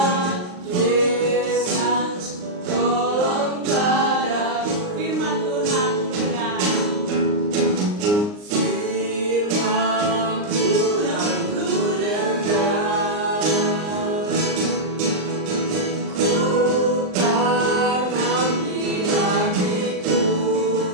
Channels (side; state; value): left; late; 39 ms